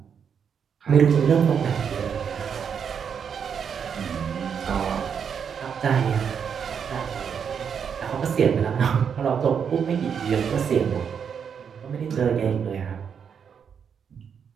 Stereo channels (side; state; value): left; quieter; 7.2 dB